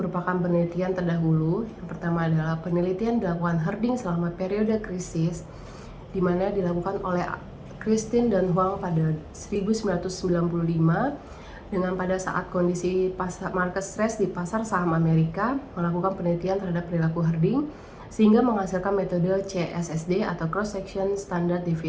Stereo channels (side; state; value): both; identical; correlation 1.00